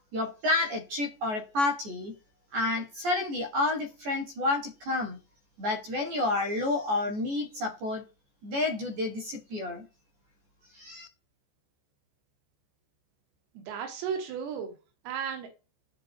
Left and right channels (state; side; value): late; left; 14 ms